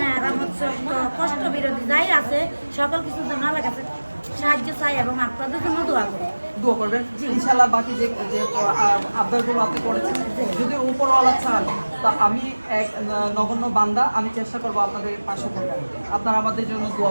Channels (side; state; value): both; inverted; correlation -1.00